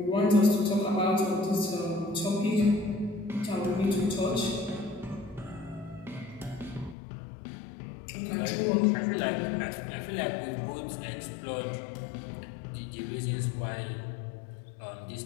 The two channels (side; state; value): right; drops out; at 7.0 s